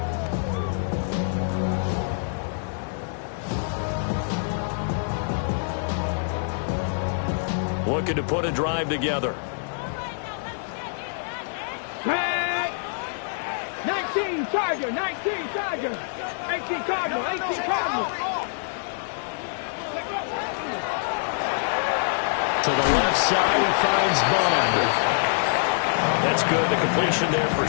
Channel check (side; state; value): right; silent; digital silence